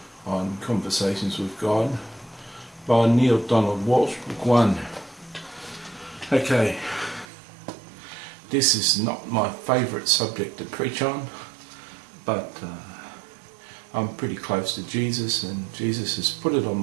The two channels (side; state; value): left; drops out; at 7.2 s